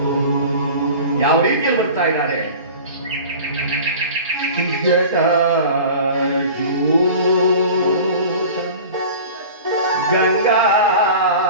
ಯಾವ ರೀತಿಯಲ್ಲಿ ಬರ್ತಾ ಇದ್ದಾರೆ? ಗಂಗಾ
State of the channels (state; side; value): inverted; both; correlation -0.39